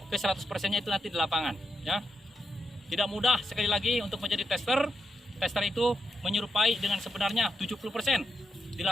ke 100%-nya itu nanti di lapangan, ya. Tidak mudah sekali lagi untuk menjadi tester. Tester itu menyerupai dengan sebenarnya 70%, di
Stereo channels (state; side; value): normal; both; correlation 0.82